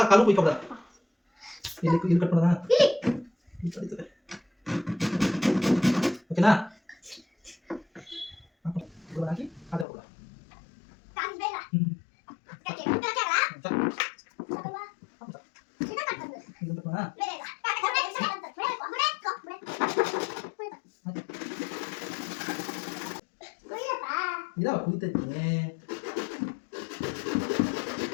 ಕಾಲು ಕುಯ್ಕೊಬಿಡ ಇಲ್ಲಿ ಕಟ್ ಮಾಡೋಣ ಓಕೆನಾ ಹಾಕಿ ಅದೇ ಕೊಡ ಇದಾವ ಕುಯ್ತೈತೆ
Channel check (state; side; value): drops out; right; at 9.9 s